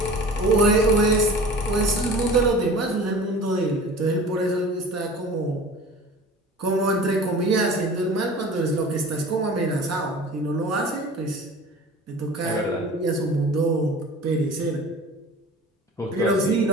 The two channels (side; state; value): both; normal; correlation 0.40